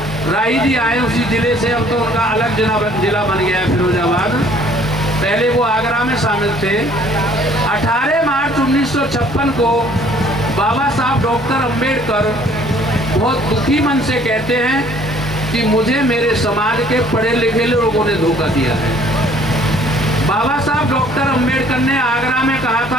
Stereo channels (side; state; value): both; normal; correlation 0.57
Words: राही जी आए, उसी जिले से, अब तो उनका अलग जिला बन गया है फिरोजाबाद, पहले वो आगरा में शामिल थे। 18 मार्च 1956 को बाबा साहब डॉक्टर अंबेडकर बहुत दुखी मन से कहते हैं कि मुझे मेरे समाज के पढ़े लिखे लोगों ने धोखा दिया है। बाबा साहब डॉक्टर अंबेडकर ने आगरा में कहा